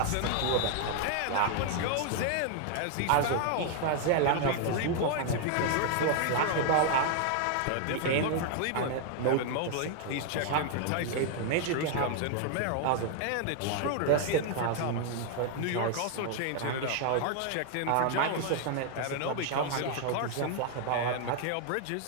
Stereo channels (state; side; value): different; both; correlation 0.00